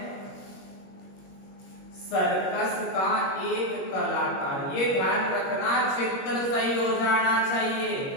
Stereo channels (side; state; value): right; late; 21 ms